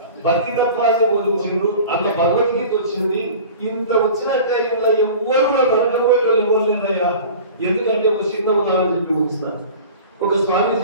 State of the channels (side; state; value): both; inverted; correlation -0.40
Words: భక్తితత్వాన్ని బోధించిండు. అట్లా భగవద్గీత వచ్చింది. ఇంత వచ్చినట్టే ఇంట్లో ఎవ్వరు కూడా నరకపోయే వాళ్ళు ఎవరు లేదయ్యా. ఎందుకంటే ఒక చిన్న ఉదాహరణ చెప్పి ముగిస్తాను. ఒక